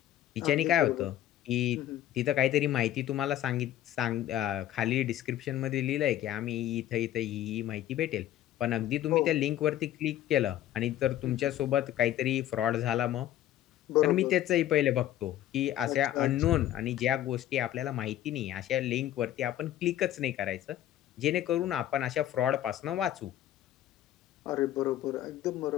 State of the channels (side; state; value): right; quieter; 12.7 dB